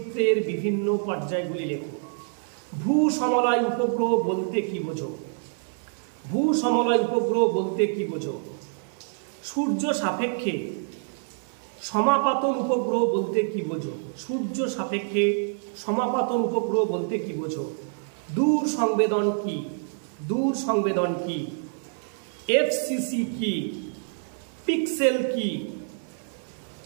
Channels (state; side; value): silent; left; 59 dB below the other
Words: বিভিন্ন পর্যায়গুলি লেখো। ভূ সমলয় উপগ্রহ বলতে কি বোঝো? ভূ সমলয় উপগ্রহ বলতে কি বোঝো? সূর্য সাপেক্ষে সমাপাতন উপগ্রহ বলতে কি বোঝো? সূর্য সাপেক্ষে সমাপাতন উপগ্রহ বলতে কি বোঝো? দূর সংবেদন কি? দূর সংবেদন কি? এফসিসি কি? পিক্সেল কি?